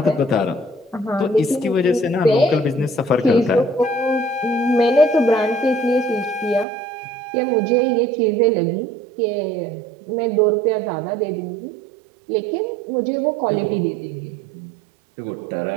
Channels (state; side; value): drops out; left; at 6.7 s